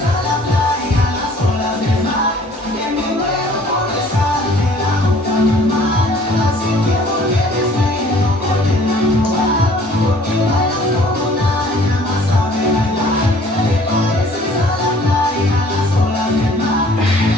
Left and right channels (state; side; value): normal; both; correlation 0.54